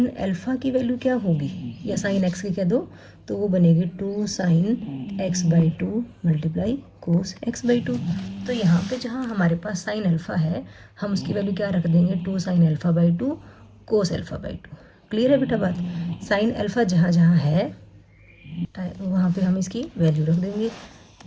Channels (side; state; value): both; identical; correlation 1.00